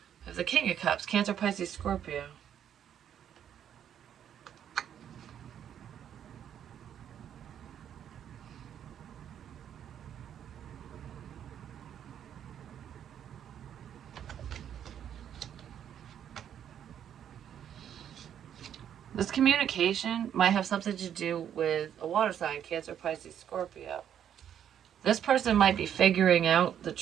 The King of Cups, Cancer, Pisces, Scorpio. This communication might have something to do with a water sign, Cancer, Pisces, Scorpio. This person might be figuring out the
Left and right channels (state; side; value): quieter; left; 9.5 dB